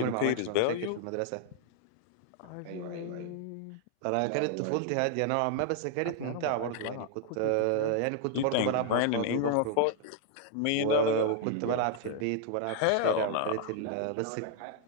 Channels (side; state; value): both; different; correlation 0.00